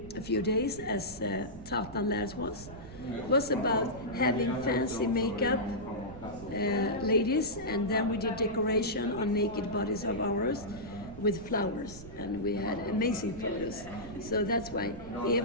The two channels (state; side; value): noise; right; rumble, 14 dB below the sound